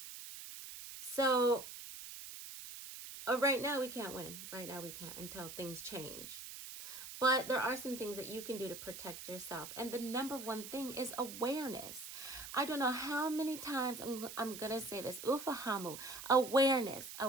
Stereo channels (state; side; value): noise; right; hiss, 11 dB below the sound